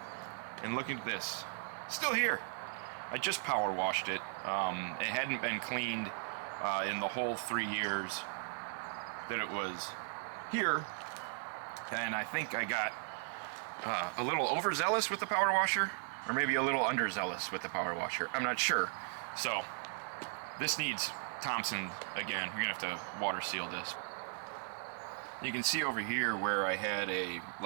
And look at this. Still here. I just power washed it. It hadn't been cleaned in the whole 3 years that it was here. And I think I got a little overzealous with the power washer, or maybe a little underzealous with the power washer. I'm not sure. So this needs Thompson again. We're gonna have to water seal this. You can see over here where I had a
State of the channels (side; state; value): left; silent; digital silence